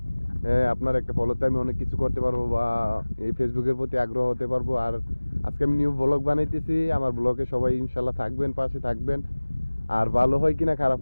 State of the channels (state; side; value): inverted; both; correlation -1.00